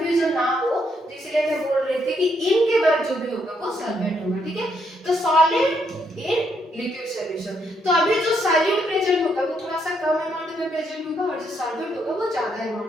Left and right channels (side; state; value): both; normal; correlation 0.75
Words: ना हो, तो इसलिए मैं बोल रही थी कि इनके बाद जो भी होगा वो सॉल्वेंट होगा। ठीक है, तो सॉलिड इन लिक्विड सॉल्यूशन, तो अभी जो सॉल्यूट प्रेजेंट होगा वो थोड़ा सा कम अमाउंट में प्रेजेंट होगा, और जो सॉल्वेंट होगा वो ज्यादा